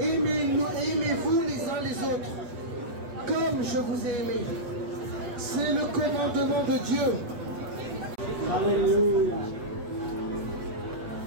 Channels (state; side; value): late; left; 8.2 ms